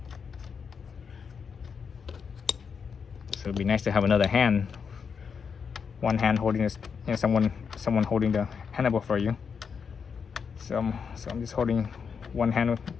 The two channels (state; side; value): quieter; right; 6.2 dB